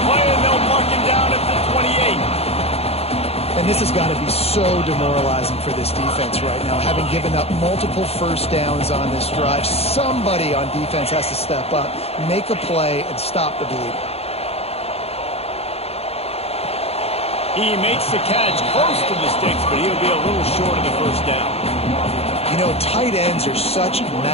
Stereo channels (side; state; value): right; late; 0.29 ms